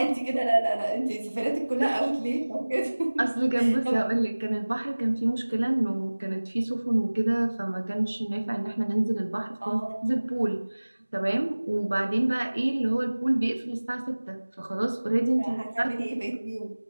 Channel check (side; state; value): both; inverted; correlation -1.00